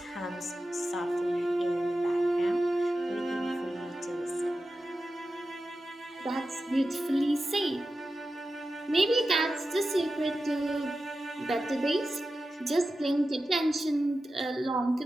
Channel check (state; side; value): normal; both; correlation 0.92